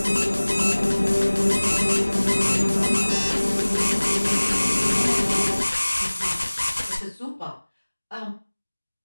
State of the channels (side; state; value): both; inverted; correlation -1.00